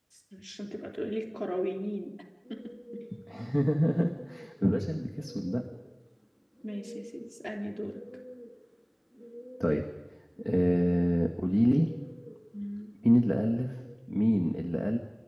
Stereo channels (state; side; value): identical; both; correlation 1.00